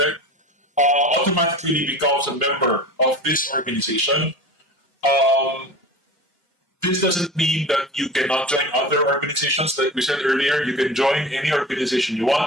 automatically becomes a member of this organization. Um, this doesn't mean that you cannot join other organizations. Like we said earlier, you can join any organization you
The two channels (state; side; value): normal; both; correlation 0.35